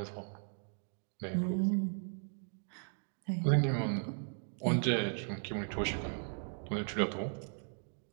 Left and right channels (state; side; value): silent; left; 53 dB below the other